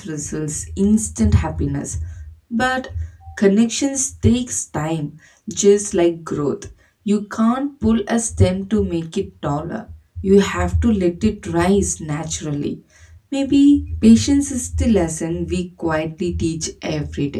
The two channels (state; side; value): identical; both; correlation 1.00